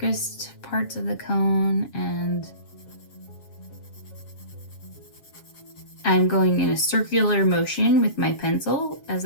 parts of the cone, and I'm going in a circular motion with my pencil as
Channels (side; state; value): right; late; 7.4 ms